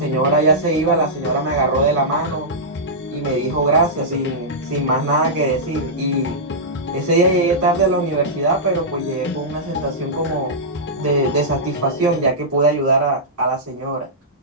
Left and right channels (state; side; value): normal; both; correlation -0.13